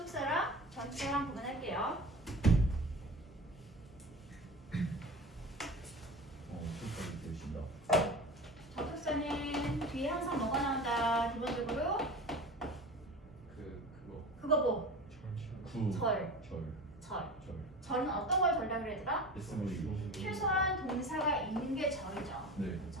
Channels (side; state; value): both; normal; correlation 0.34